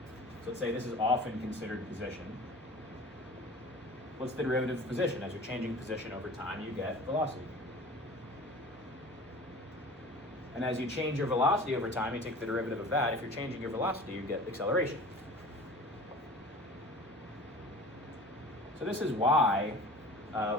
So let's say this is often considered position. What's the derivative of position? As you're changing position over time, you get velocity. And as you change your velocity over time, you take the derivative of that. If you're changing your velocity, you get acceleration. So this is why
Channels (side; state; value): both; normal; correlation 0.40